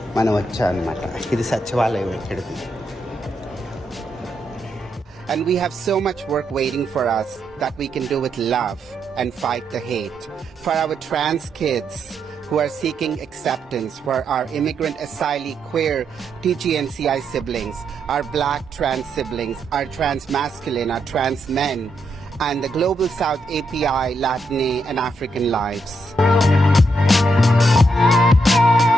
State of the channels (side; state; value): both; normal; correlation 0.80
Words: మనం వచ్చాం అనమాట. ఇది సచివాలయం ఇక్కడిది. And we have so much work waiting for us that we can do with love and fight the hate. For our trans kids who are seeking acceptance, for our immigrant, asylee, queer, TGNCI siblings, our black trans siblings, our trans masculine, our trans men, and the Global South API, Latine, and African lives.